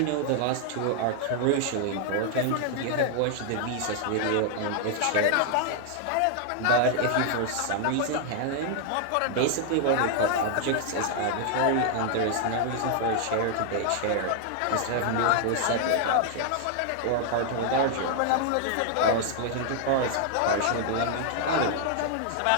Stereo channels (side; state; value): both; different; correlation 0.00